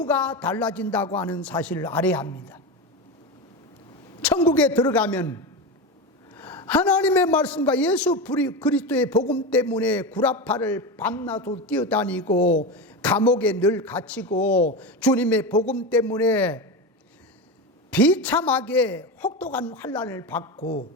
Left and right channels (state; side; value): normal; both; correlation 0.20